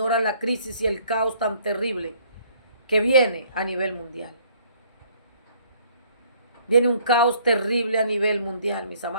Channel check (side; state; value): both; inverted; correlation -0.61